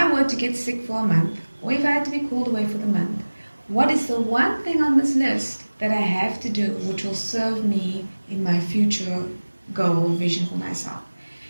were to get sick for a month, or if I had to be called away for the month, what is the one thing on this list that I have to do which will serve me in my future goal, vision for myself?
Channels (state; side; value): inverted; both; correlation -1.00